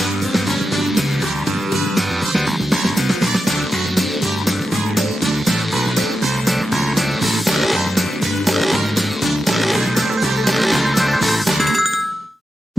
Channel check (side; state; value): both; normal; correlation 0.88